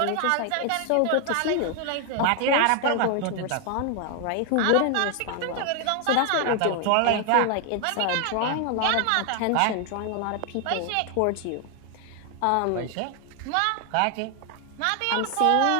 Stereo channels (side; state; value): both; different; correlation 0.00